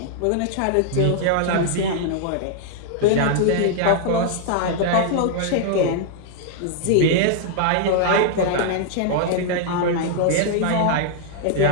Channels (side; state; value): both; different; correlation -0.01